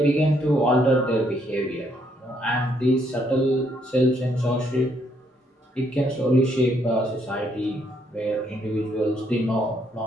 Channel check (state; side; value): normal; both; correlation 0.72